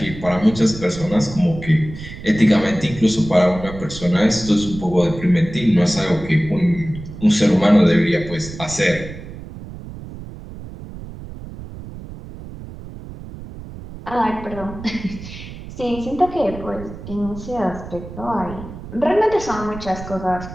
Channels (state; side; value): noise; right; rumble, 13 dB below the sound